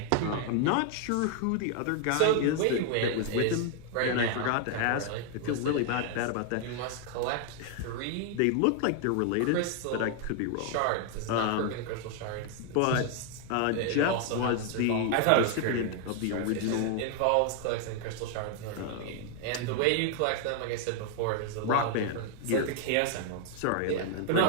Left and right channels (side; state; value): both; different; correlation 0.00